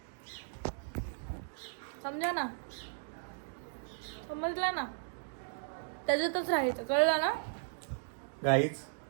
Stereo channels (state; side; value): silent; left; digital silence